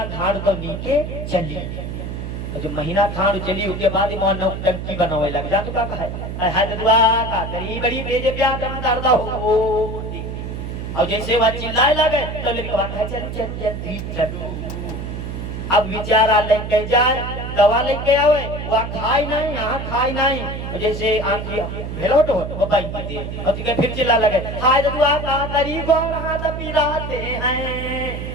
खाड़ तो नीचे चली जो महीना खान चली उसके बाद ही मोहन टंकी बनावे लग जा तो का है हदवा का करी बड़ी बेजे प्यार करना दर्दा हो और जैसे वह चिल्लाए लगे तो लड़का है चल चल जल्दी चलो अब विचारा लेके जाए दवा लेके आवे वह खाई नहीं यहाँ खाई नहीं जैसे आंखी भेलोट हो वो बाई दे और फिर चिल्ला लगे हाय दवा का तरी को हाथ पिराते हैं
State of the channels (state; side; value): noise; right; hum, 6 dB below the sound